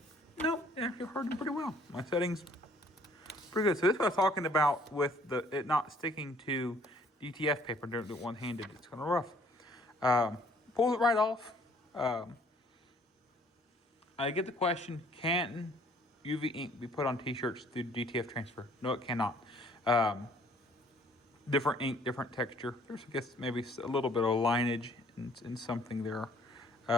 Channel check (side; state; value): both; normal; correlation 0.59